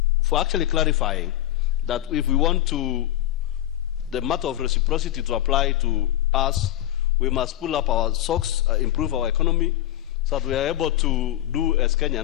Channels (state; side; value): quieter; right; 13.4 dB